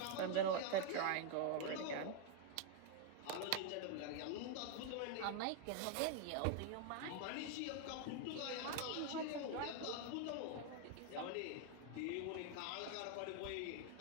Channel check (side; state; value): both; different; correlation 0.01